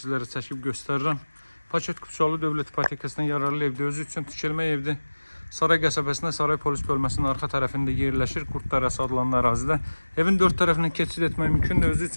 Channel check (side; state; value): both; inverted; correlation -1.00